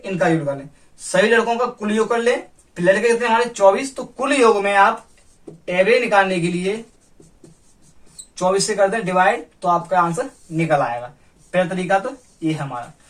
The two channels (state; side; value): identical; both; correlation 1.00